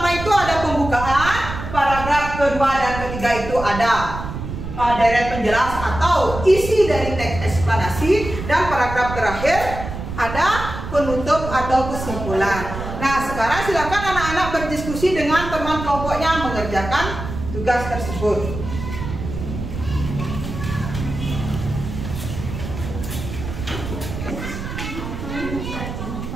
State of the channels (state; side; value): noise; right; rumble, 7 dB below the sound